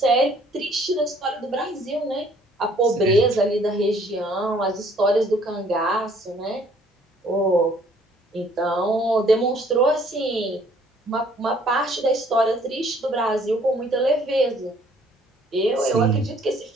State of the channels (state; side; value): normal; both; correlation 0.60